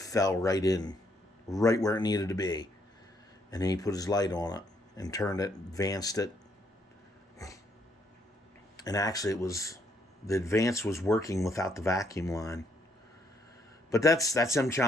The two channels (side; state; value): both; normal; correlation 0.71